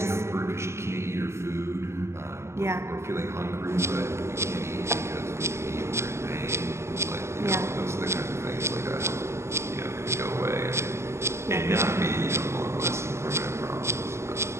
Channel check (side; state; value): left; late; 0.13 ms